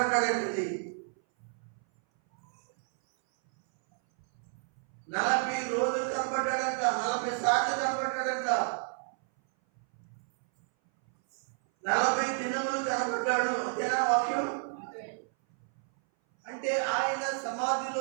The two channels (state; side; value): silent; left; 57 dB below the other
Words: 40 రోజులు కనబడ్డాడంట, 40 సార్లు కనబడ్డాడంట, 40 దినములు కనబడ్డాడు. అంతేనా వాక్యం? అంటే ఆయన సమాధిలో